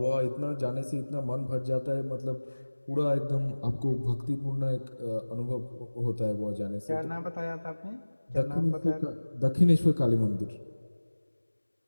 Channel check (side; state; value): both; inverted; correlation -1.00